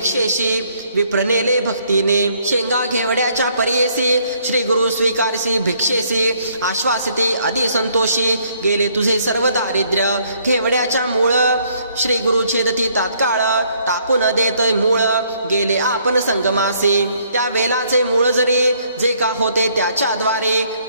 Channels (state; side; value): inverted; both; correlation -0.66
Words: विप्रनेले भक्तीने शेंगा घेवड्याच्या परियेसी श्री गुरु स्वीकारसी भिक्षेसी आश्वासिते अति संतोषी गेले तुझे सर्व दारिद्र्य घेवड्याच्या मूळ श्री गुरु छेदती तात्काळ टाकून देत मूळ गेले आपण संगमासी त्या वेलाचे मूळ जरी जे का होते त्याच्याद्वारे